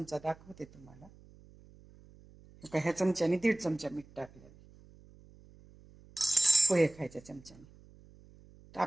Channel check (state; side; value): noise; right; hum, 24 dB below the sound